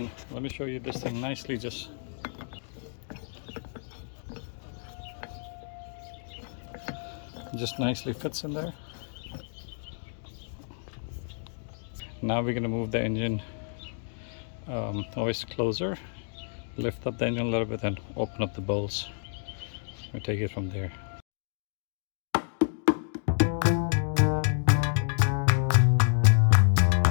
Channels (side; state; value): right; silent; digital silence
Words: let me show you this thing nicely. Just nicely fits in there. Now we're going to move the engine hoist closer, lift up the engine a little bit, and open up the bolts. We'll take it from there.